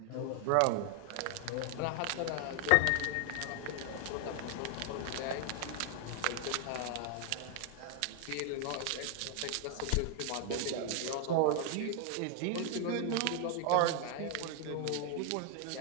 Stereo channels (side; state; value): both; different; correlation 0.00